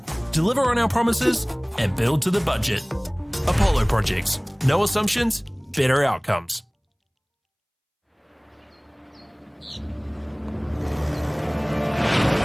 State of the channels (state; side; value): identical; both; correlation 1.00